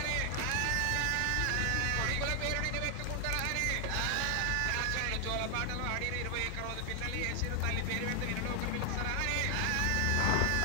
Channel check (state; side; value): different; both; correlation 0.00